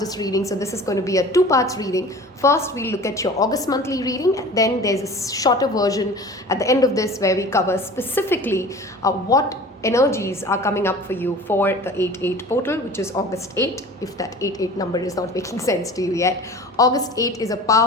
reading. So this is going to be a 2-part reading. First, we'll look at your August monthly reading, and then there's a shorter version at the end of this where we cover specifically what energies are coming up for you for the 8-8 portal, which is August 8, if that 8-8 number is not making sense to you yet. August 8 is a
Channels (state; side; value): normal; both; correlation 0.41